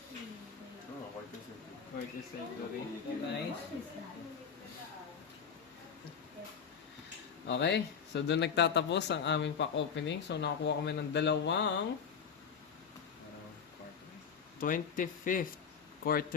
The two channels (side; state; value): right; quieter; 6.8 dB